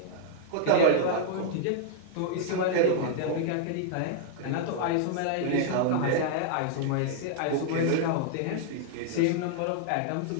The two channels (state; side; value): different; both; correlation -0.01